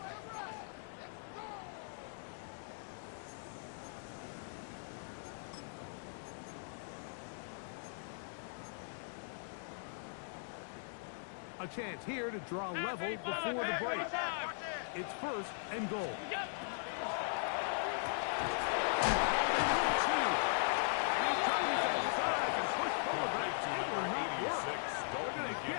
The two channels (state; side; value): silent; right; digital silence